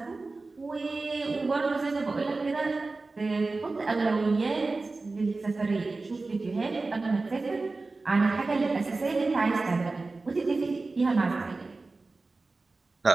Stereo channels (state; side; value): quieter; left; 3.6 dB